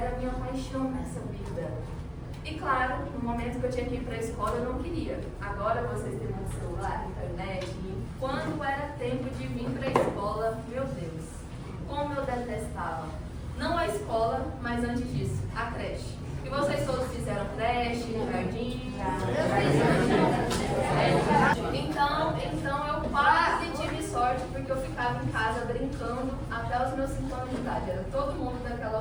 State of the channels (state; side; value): identical; both; correlation 1.00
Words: a minha paixão nessa vida. E claro, no momento que eu tinha que ir para a escola, eu não queria. Agora vocês têm um celular, internet, e quando era tempo de vir para a escola, meu Deus, como eu detestava. Não a escola, mas antes disso, a creche. E vocês todos fizeram creche, jardim? Então eu quase tive sorte, porque eu ficava em casa brincando até os meus 5 anos de idade. Era todo mundo daquela